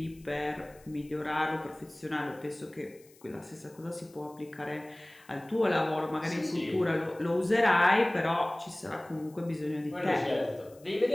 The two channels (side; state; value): left; noise; hiss, 27 dB below the sound